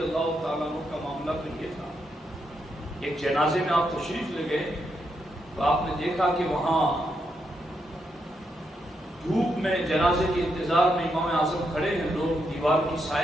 اللہ تعالیٰ عنہ کا معاملہ تو یہ تھا، ایک جنازے میں آپ تشریف لے گئے تو آپ نے دیکھا کہ وہاں دھوپ میں جنازے کے انتظار میں امام اعظم کھڑے ہیں، لوگ دیوار کی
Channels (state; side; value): normal; both; correlation 0.81